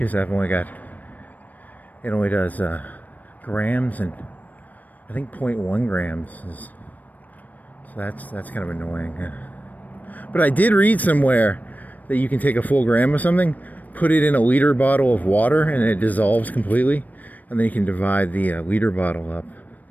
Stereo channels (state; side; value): late; right; 0.079 ms